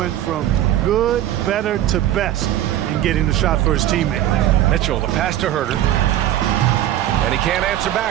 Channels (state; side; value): quieter; left; 12.5 dB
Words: from good, better to best in getting the shot for his teammate. Mitchell, the pass to Herter. And he can't answer